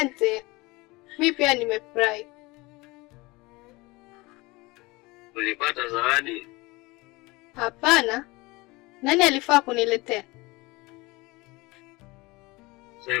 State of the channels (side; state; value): right; quieter; 23.0 dB